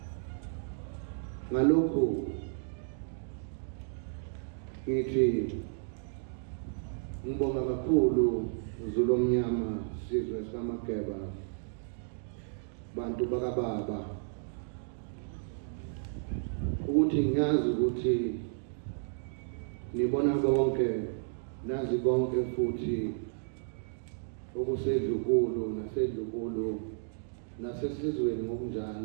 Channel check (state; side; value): silent; left; digital silence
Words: Ngalokhu ngithi ngibonga kakhulu Zulu omnyama, sizwe samaGeba, bantu bakababa, ukuthi ngiyazi ukuthi nibona konke, nazi konke futhi okusedlukulu nasedlukulu nasesizweni